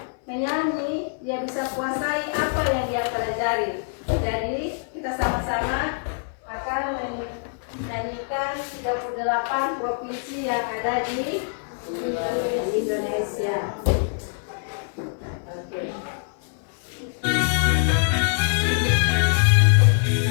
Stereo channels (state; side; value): silent; right; 59 dB below the other